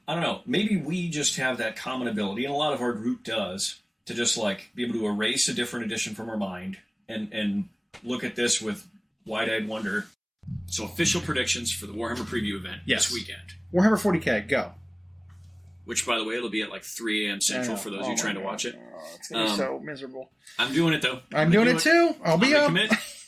I don't know. Maybe we just have that common ability, and a lot of our group does, to just, like, be able to erase a different edition from our mind and look at this with wide-eyed wonder. So, official predictions for the Warhammer Preview event this weekend. Warhammer 40K, go. Which, by the way, it'll be at, like, 3 a.m. Central for those of you trying to watch it. Oh, it's going to be so miserable. I'm doing it, though. I'm doing it, too. I'll be up.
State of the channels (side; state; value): both; identical; correlation 1.00